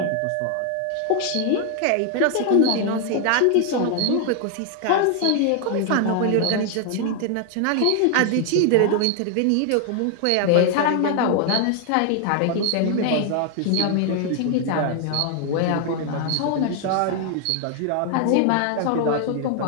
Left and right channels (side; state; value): both; different; correlation 0.00